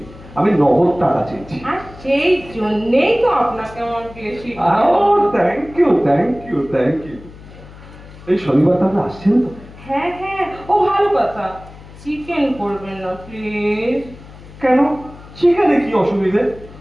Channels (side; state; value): left; noise; hum, 19 dB below the sound